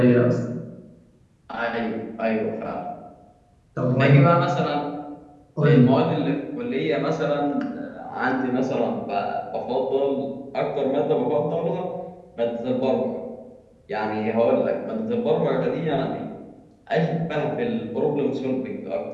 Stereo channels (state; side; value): identical; both; correlation 1.00